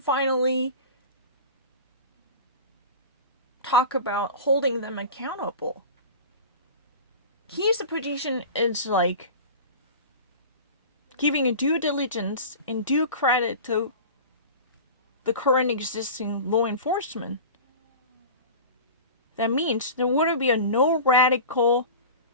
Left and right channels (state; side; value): inverted; both; correlation -0.34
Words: talk about holding them accountable. His position is like giving a due diligence and due credit to the current existing law enforcement. That means there wouldn't be no radical